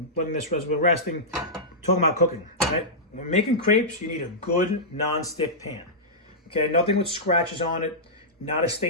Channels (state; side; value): normal; both; correlation -0.13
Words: We're resting, talking about cooking, right? When making crepes, you need a good non-stick pan, okay? Nothing with scratches on it, not a